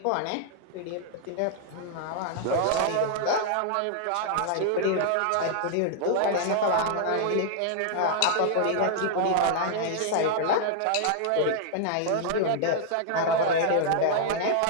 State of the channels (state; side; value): different; both; correlation -0.01